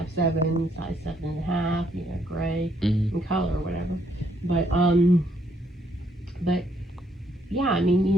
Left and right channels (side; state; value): both; normal; correlation 0.71